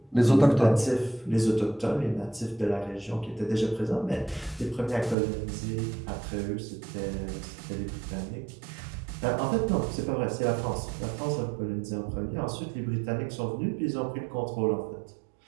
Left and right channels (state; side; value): drops out; left; at 5.2 s